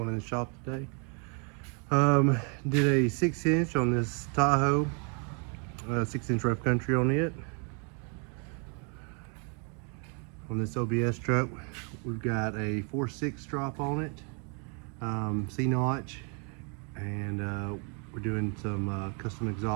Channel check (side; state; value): left; quieter; 37.3 dB